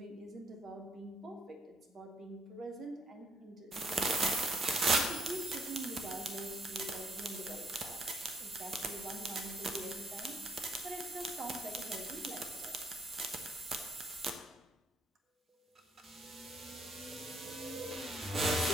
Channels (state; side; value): normal; both; correlation 0.72